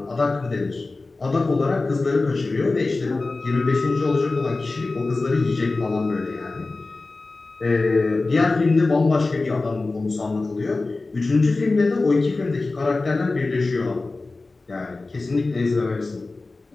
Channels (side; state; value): right; quieter; 3.5 dB